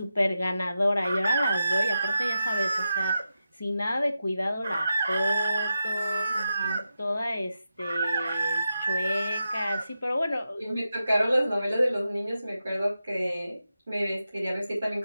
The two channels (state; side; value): inverted; both; correlation -0.89